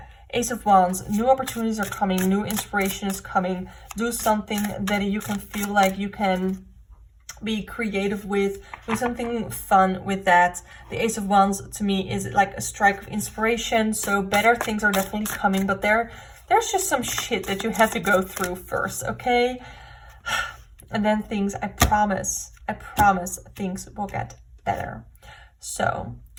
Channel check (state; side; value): identical; both; correlation 1.00